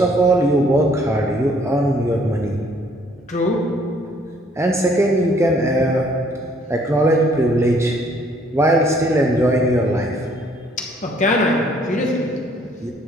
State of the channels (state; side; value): normal; both; correlation 0.62